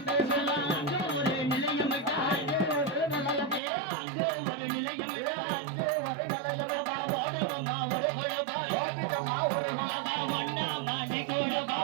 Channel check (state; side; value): drops out; left; at 3.6 s